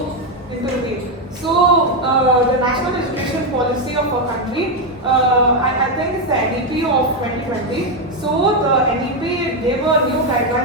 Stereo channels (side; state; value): both; normal; correlation 0.05